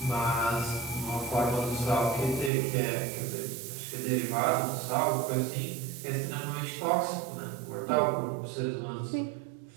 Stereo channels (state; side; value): drops out; left; at 2.5 s